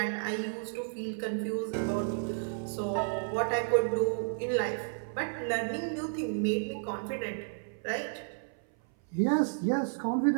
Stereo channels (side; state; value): left; silent; 56 dB below the other